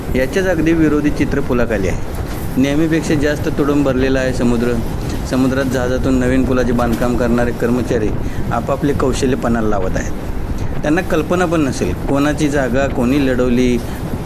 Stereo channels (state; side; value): identical; both; correlation 1.00